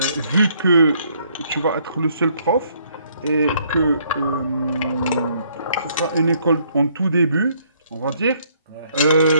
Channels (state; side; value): inverted; both; correlation -0.67